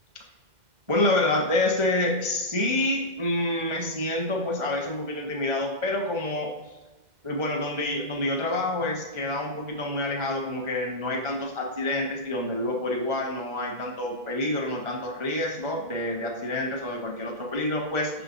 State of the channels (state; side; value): late; left; 2.0 ms